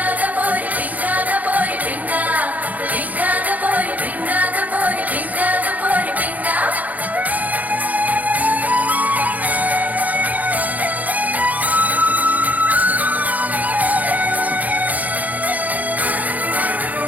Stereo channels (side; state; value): left; late; 0.078 ms